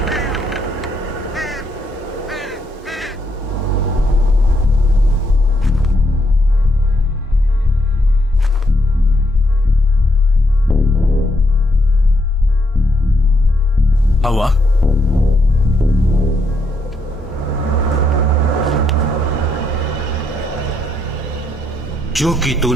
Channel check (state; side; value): normal; both; correlation 0.76